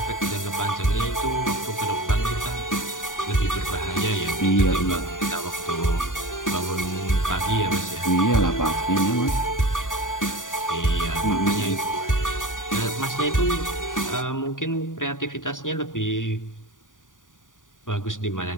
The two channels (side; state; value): right; late; 0.88 ms